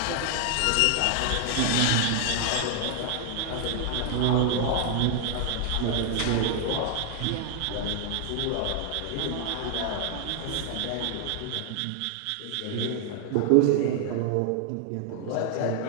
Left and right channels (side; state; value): both; different; correlation 0.00